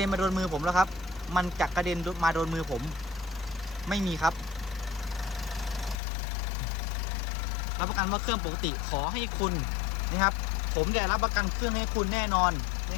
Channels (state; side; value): drops out; right; at 6.0 s